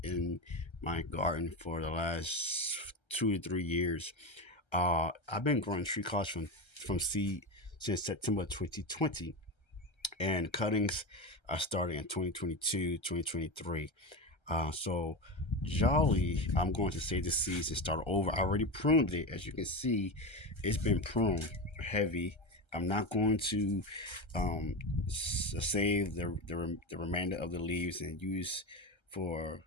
in my garden for the last 2 to 3 years. I've been growing tree crops from seed since September 2020, and cuttings are starting in 2022, 2023. So Jolly, I'm going to save the seeds and start over. I already pruned it. As you can see, it's been pruned heavy. I'm not going to um, save the remainder of the leaves and use for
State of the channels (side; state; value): right; late; 1.3 ms